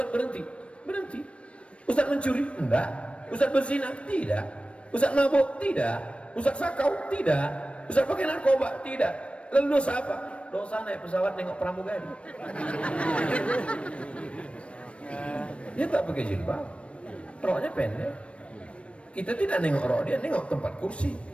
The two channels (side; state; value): right; late; 0.061 ms